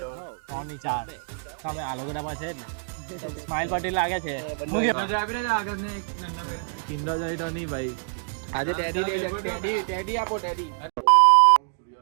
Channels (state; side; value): silent; left; digital silence